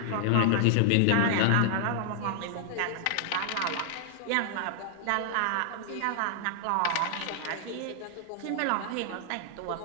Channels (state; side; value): different; both; correlation -0.01